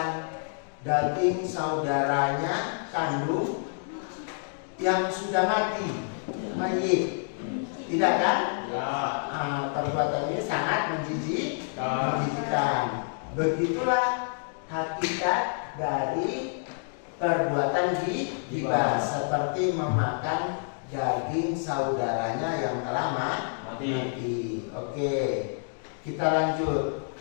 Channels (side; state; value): right; silent; digital silence